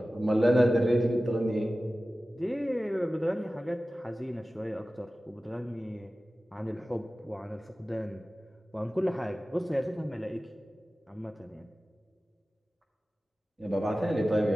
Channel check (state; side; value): normal; both; correlation 0.96